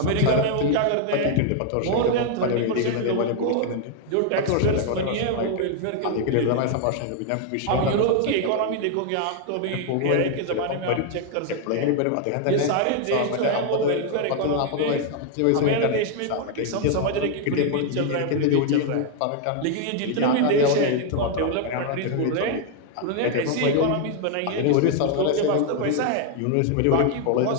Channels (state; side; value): different; both; correlation 0.00